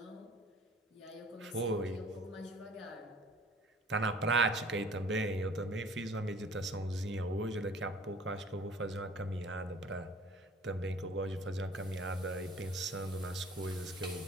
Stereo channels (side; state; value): both; normal; correlation 0.50